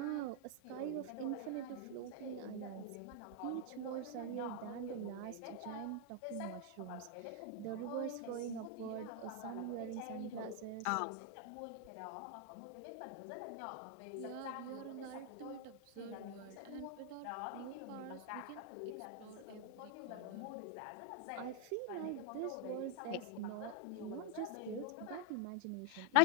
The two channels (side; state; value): both; different; correlation 0.00